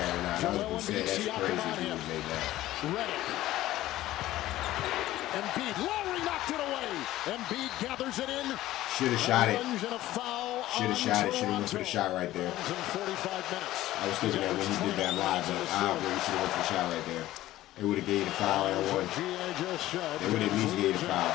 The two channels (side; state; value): right; quieter; 15.3 dB